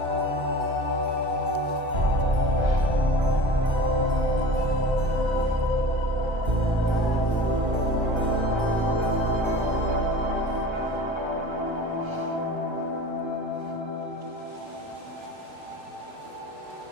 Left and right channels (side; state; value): left; late; 1.3 ms